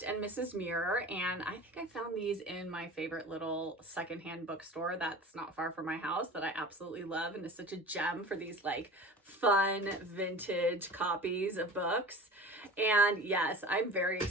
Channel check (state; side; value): normal; both; correlation 0.37